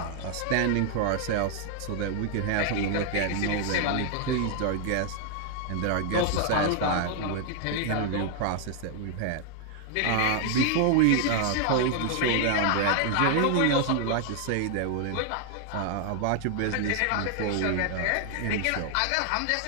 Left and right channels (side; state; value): both; different; correlation 0.00